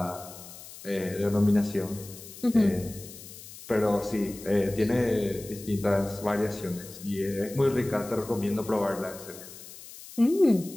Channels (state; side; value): noise; left; hiss, 16 dB below the sound